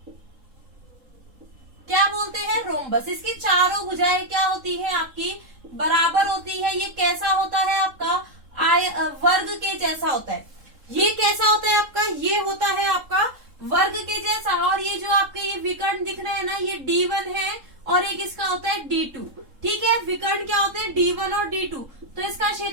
क्या बोलते हैं, रोम्बस। इसकी चारों भुजाएं क्या होती हैं आपकी, बराबर होती है। ये कैसा होता है आपका, वर्ग के जैसा होता है। ये कैसा होता है आपका, ये होता है आपका वर्ग के जैसा। और ये जो आपके ये विकर्ण दिख रहे और एक इसका होता है D2। ठीक है, विकर्ण क्या होते हैं D1 और D2। तो इसका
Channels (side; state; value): left; late; 3.7 ms